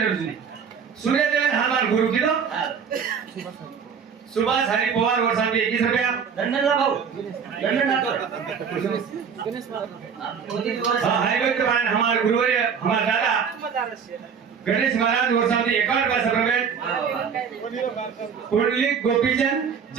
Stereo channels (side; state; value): left; quieter; 6.7 dB